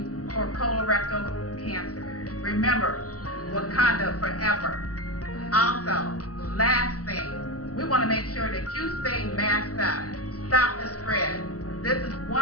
for colorectal cancer. Remember, Wakanda forever. Also, last thing, we want to make sure that you stay masked up. Stop the spread. This is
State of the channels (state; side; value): late; right; 0.67 ms